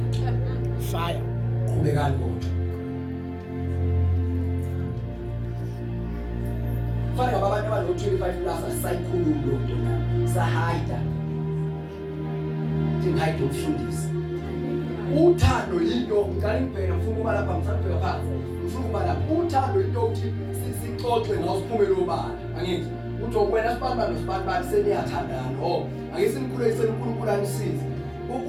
fire qhubekani kodwa fire abantu abalo 25 plus asayikhuluma lo nto na sahide thingayide umfundisi uthando into ngicela ngibheke ngifuna ukuba lapha ngisabheka phansi ngifuna ukuba lapha uthando into uthi sixoxe ngawo siphumele obala angithi uthi okwena sibamba nosibani seniyathandana ake simkhulekisele uNkulunkulu anisize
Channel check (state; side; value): identical; both; correlation 1.00